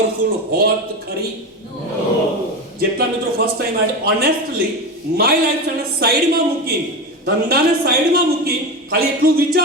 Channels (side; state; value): both; normal; correlation 0.22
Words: હોત ખરી? જેટલા મિત્રો ફર્સ્ટ ટાઈમ આજે ઓનેસ્ટલી માય લાઈફ ને સાઈડમાં મૂકી, ધંધાને સાઈડમાં મૂકી ખાલી એટલું